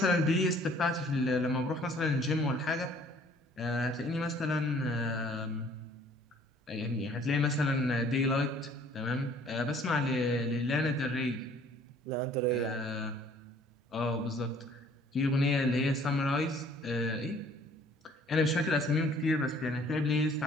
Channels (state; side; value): normal; both; correlation 0.56